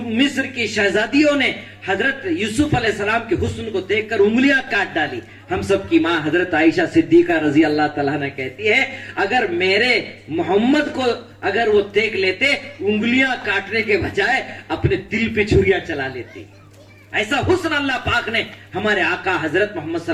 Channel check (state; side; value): identical; both; correlation 1.00